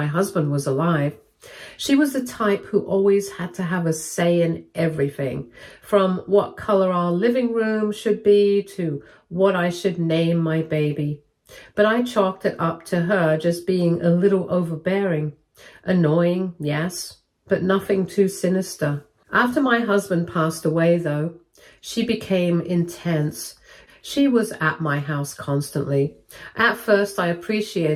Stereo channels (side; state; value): both; identical; correlation 1.00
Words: husband was alive. She was the type who always had to have a say in everything, from what color our living room should be to what I should name my baby. But I chalked it up to her just being a little overbearing. Annoying, yes, but nothing too sinister. After my husband passed away, though, she became intense. She was at my house constantly. At first, I